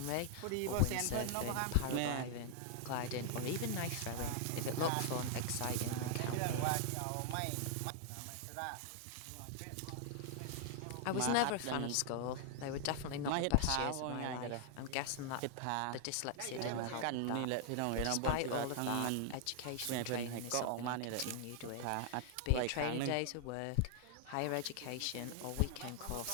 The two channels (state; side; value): different; both; correlation 0.00